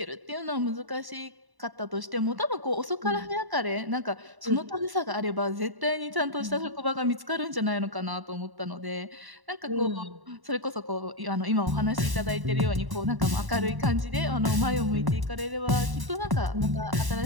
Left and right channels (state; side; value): late; left; 1.0 ms